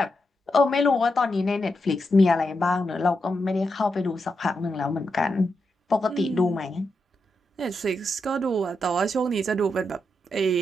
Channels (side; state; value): both; normal; correlation 0.85